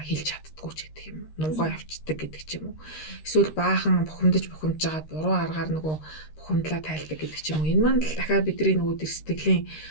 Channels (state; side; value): late; right; 13 ms